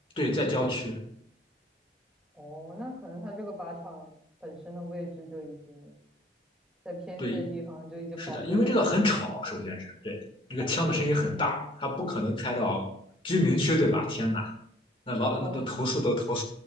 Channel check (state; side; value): normal; both; correlation 0.58